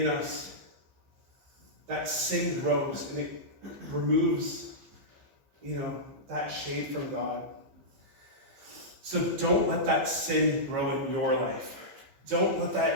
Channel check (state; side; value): late; left; 15 ms